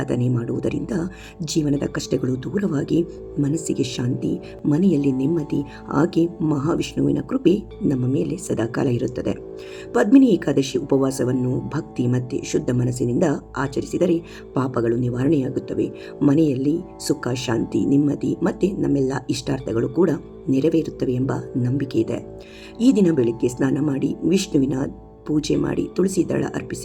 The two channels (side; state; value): both; identical; correlation 1.00